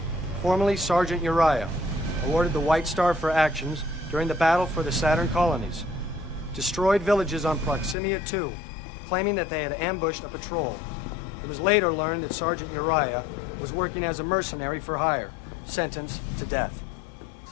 formerly Sergeant Uriah, awarded the White Star for actions during the battle for the Saturn colonies. Destroyed villages on Proximia 2, claiming that they had ambushed a patrol. It was later learned that Sergeant Uriah was working as a mercenary for hire, sentenced to death.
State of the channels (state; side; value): drops out; right; at 8.0 s